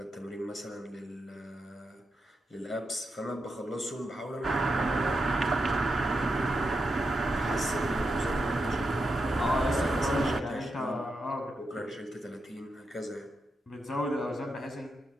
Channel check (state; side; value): normal; both; correlation 0.86